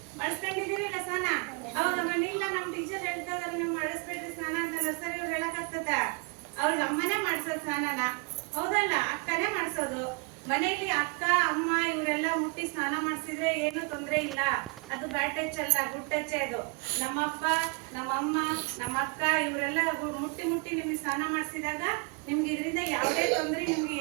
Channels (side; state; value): left; quieter; 31.2 dB